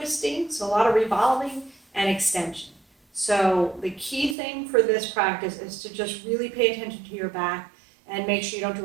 so a lot of revolving and extension. So the key thing for this practice is to just really pay attention to your back and make sure you don't do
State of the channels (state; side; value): drops out; left; at 4.4 s